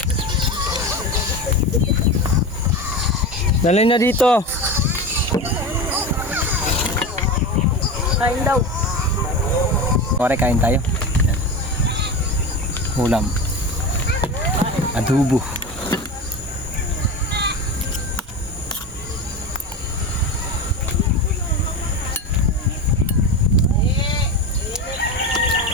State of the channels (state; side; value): normal; both; correlation 0.25